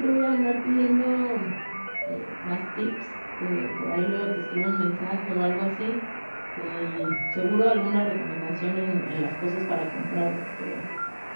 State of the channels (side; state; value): both; inverted; correlation -1.00